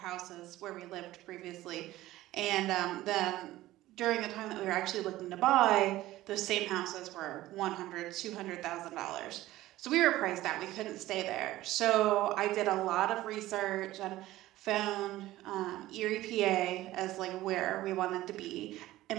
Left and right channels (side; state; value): left; quieter; 16.1 dB